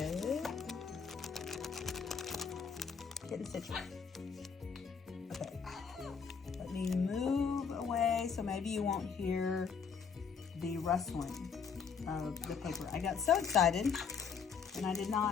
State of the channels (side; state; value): right; quieter; 6.2 dB